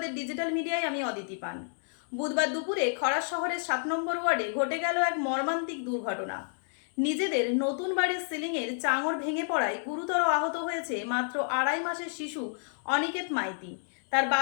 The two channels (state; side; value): silent; right; digital silence